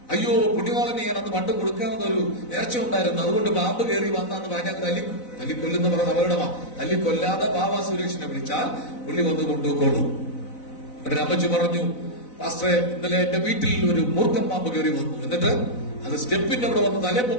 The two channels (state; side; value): late; right; 4.0 ms